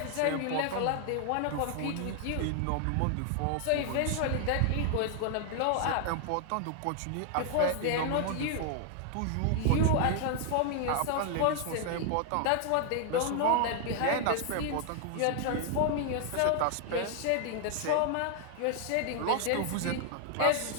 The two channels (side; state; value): both; different; correlation 0.00